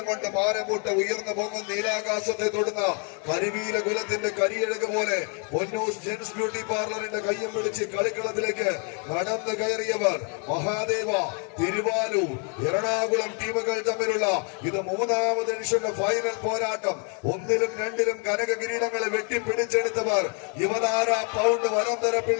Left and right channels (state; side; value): quieter; right; 38.0 dB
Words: കൊണ്ട് മാനംകൂട്ട് ഉയർന്നു പോകുന്ന നീലാകാശത്തെ തൊടുന്ന കരിവീല കുലത്തിന്റെ കരിയഴക് പോലെ പൊന്നൂസ് ജെൻസ് ബ്യൂട്ടി പാർലറിന്റെ കയ്യം പിടിച്ച് കളിക്കളത്തിലേക്ക് നടന്നു കയറിയവർ മഹാദേവ, തിരുവാലൂർ, എറണാകുളം ടീമുകൾ തമ്മിലുള്ള ഇത് മൂന്നാമത് എഡിഷന്റെ ഫൈനൽ പോരാട്ടം. 1-ലും 2-ലും കനക കിരീടങ്ങളെ വെട്ടിപ്പിടിച്ചെടുത്തവർ യുവതാര പൗണ്ട്